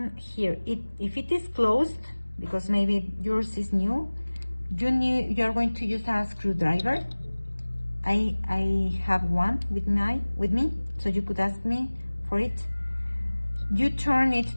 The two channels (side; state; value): both; inverted; correlation -1.00